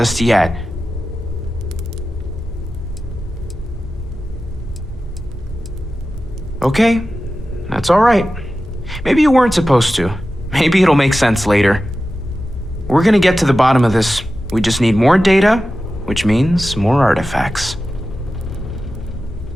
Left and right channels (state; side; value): normal; both; correlation 0.93